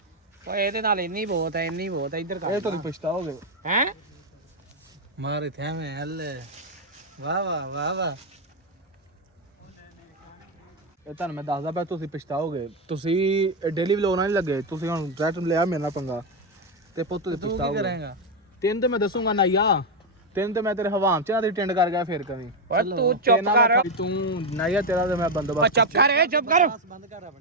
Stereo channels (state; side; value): normal; both; correlation 0.06